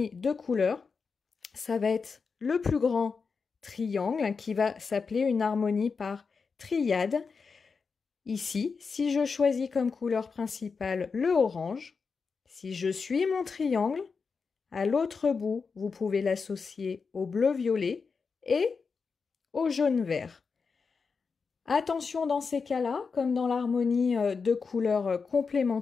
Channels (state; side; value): quieter; right; 5.1 dB